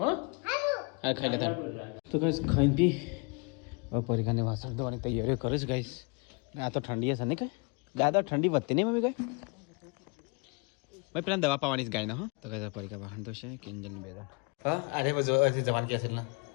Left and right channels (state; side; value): quieter; right; 31.5 dB